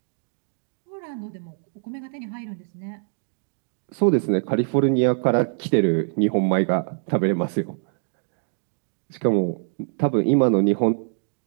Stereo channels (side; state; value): left; silent; digital silence